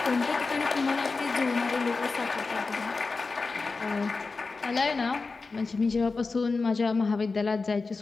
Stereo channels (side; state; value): right; quieter; 4.1 dB